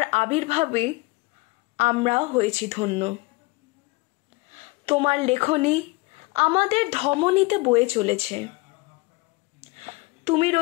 আবির্ভাবে আমরা হয়েছি ধন্য। তোমার লেখনী আমাদের ধমনীতে বয়ে চলেছে। তুমি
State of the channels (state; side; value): quieter; right; 23.6 dB